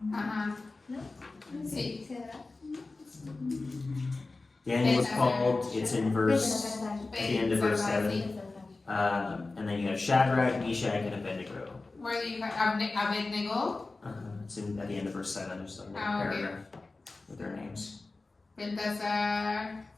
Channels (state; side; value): quieter; right; 3.5 dB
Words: Ajá. ¿No? Sí. Cedrak. Daniel was called, it's in verse, Belteshazzar. at the end of verse 7. And then you have Shadrach, Meshach, and Abednego. Where do you have Abednego? It's at the end of verse 7, there's like a Ah, okay. paragraph with their names. Beltasar.